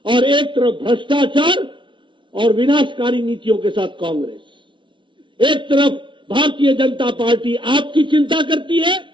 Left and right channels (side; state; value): left; late; 0.24 ms